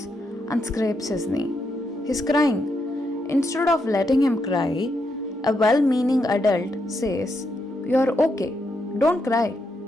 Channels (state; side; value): normal; both; correlation 0.81